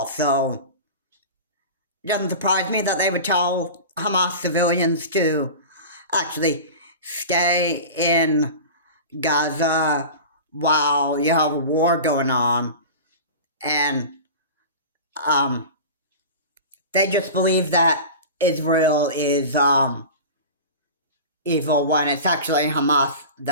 so it doesn't surprise me that they would tell Hamas civilians to actually stay in Gaza while you have a war going on, and they just believe that Israel is evil when it's actually Hamas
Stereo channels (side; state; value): both; inverted; correlation -0.33